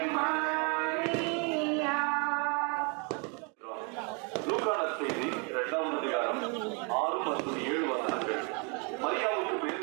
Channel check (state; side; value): quieter; left; 34.9 dB